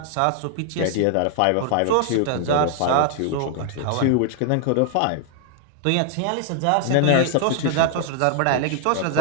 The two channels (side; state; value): both; different; correlation 0.00